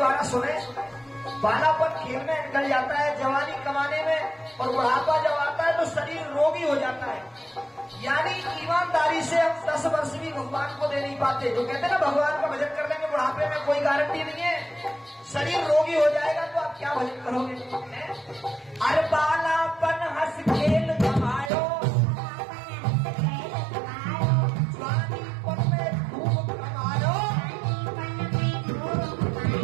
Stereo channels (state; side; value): drops out; left; at 21.5 s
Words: सुने। बालापन खेल में निकल जाता है, जवानी कमाने में, और बुढ़ापा जब आता है तो शरीर रोगी हो जाता है। यानी ईमानदारी से हम 10 वर्ष भी भगवान को दे नहीं पाते। जो कहते हैं ना भगवान का भजन कर लेंगे बुढ़ापे में, कोई गारंटी नहीं है। शरीर रोगी हो जाएगा तो आप क्या भजन करोगे? अरे बालापन हंस खेल कमायो, जवानीपन में खूब कमायो,